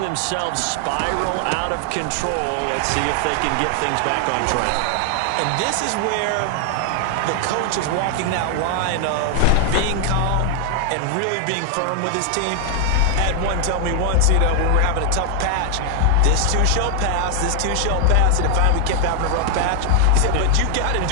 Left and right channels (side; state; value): both; different; correlation 0.00